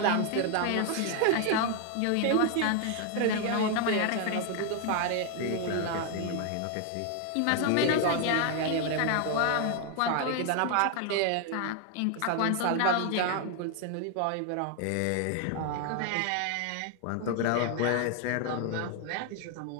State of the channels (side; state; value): both; different; correlation 0.00